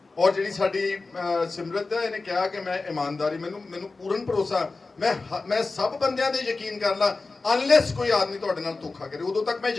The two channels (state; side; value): quieter; right; 3.7 dB